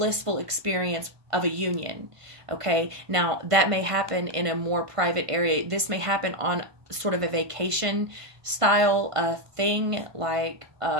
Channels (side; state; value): left; late; 1.5 ms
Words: experience of a union. Okay, now that may happen in a more private area. This may happen on sort of a vacation style thing, like